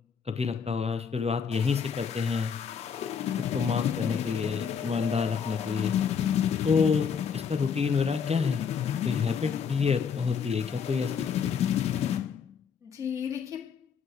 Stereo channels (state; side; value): quieter; right; 6.5 dB